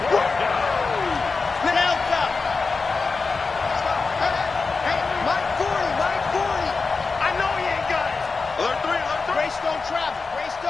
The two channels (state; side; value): quieter; right; 4.4 dB